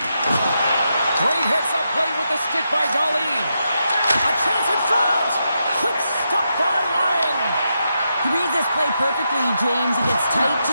Great heads-up play with the stick by Dahlin. A chance in front. Quick stop by Ryan. He reads this play perfectly, James. He gets tight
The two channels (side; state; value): both; inverted; correlation -0.84